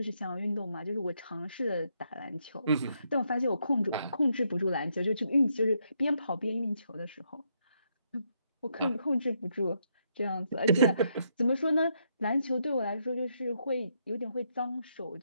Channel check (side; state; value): both; inverted; correlation -0.76